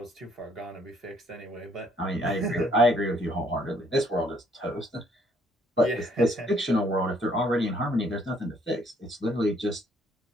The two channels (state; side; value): normal; both; correlation 0.65